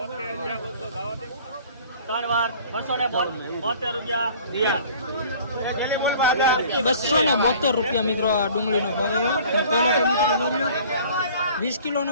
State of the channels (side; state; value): both; inverted; correlation -0.49